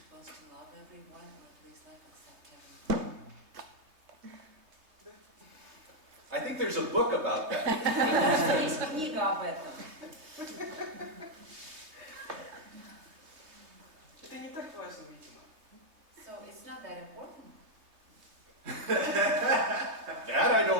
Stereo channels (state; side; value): late; left; 3.2 ms